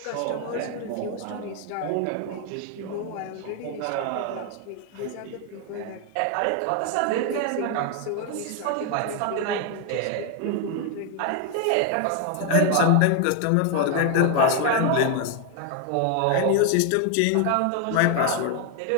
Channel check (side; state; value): both; different; correlation 0.01